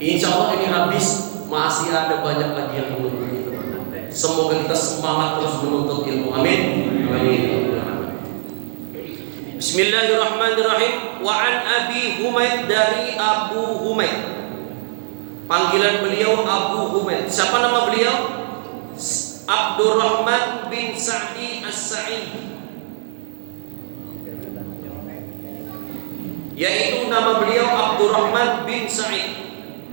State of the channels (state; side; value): silent; left; 63 dB below the other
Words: Allah ini habis, masih ada banyak lagi yang menunggu kita. Semoga kita semangat terus menuntut ilmu. Amin. Amin. Bismillahirrahmanirrahim. Wa an Abi Humaid, dari Abu Humaid. Panggilan beliau Abu Humaid. Siapa nama beliau? Abdurrahman bin Sa'di As-Sa'idi, yaitu nama beliau Abdurrahman bin Sa'id